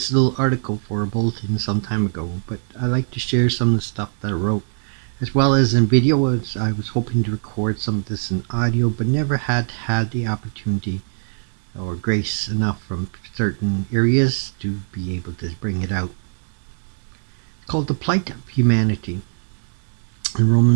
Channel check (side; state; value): left; silent; digital silence